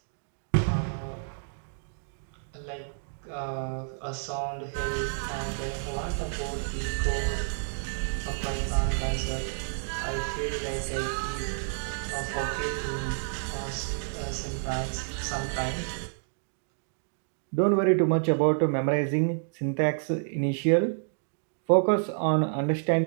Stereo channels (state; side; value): silent; left; digital silence